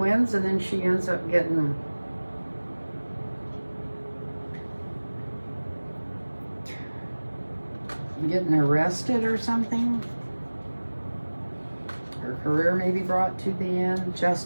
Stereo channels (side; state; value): both; inverted; correlation -1.00